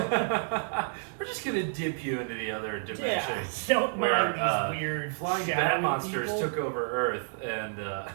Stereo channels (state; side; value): silent; left; 58 dB below the other